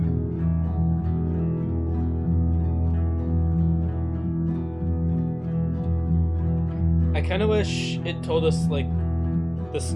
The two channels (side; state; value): right; noise; rumble, 25 dB below the sound